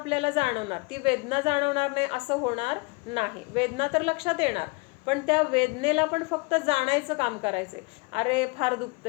जाणवणार, ती वेदना जाणवणार नाही असं होणार नाही. वेदना तर लक्षात येणार, पण त्या वेदनेला पण फक्त जाणायचं काम करायचंय. अरे फार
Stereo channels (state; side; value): quieter; right; 29.3 dB